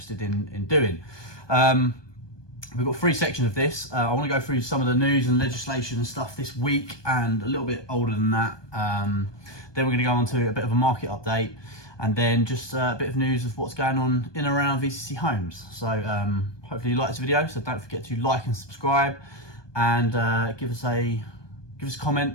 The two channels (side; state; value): right; late; 1.2 ms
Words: in doing. We've got three sections of this. I want to go through some of the news and legislation and stuff this week and a little bit older than that. Then we're going to go on to a bit of a market update and then just a bit of news of what's going on in and around VCC Homes. So hopefully you like this video, so don't forget to like and subscribe and give us a